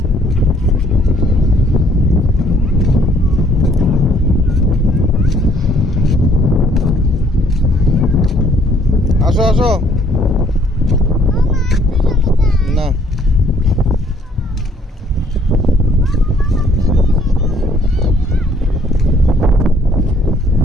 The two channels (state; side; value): normal; both; correlation 0.62